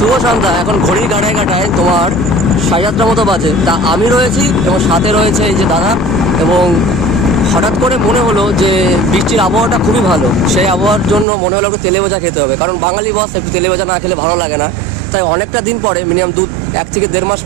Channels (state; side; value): drops out; left; at 11.2 s